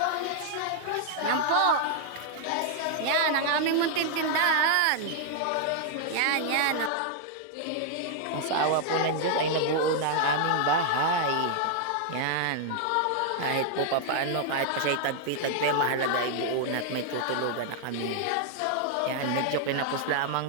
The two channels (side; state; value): both; different; correlation 0.00